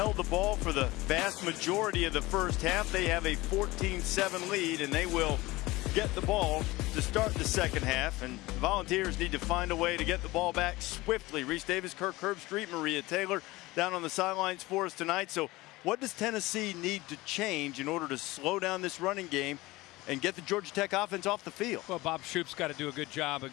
the ball for the vast majority of the first half. They have a 14-7 lead, and they will get the ball to start the second half. And the Volunteers need to find a way to get the ball back swiftly. Reese Davis, Kirk Herbstreit, Maria Taylor down on the sidelines for us tonight. So what does Tennessee need to change in order to slow down this running game and get the Georgia Tech offense off the field? Well, Bob Shoop's got to do a good job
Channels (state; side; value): quieter; right; 20.1 dB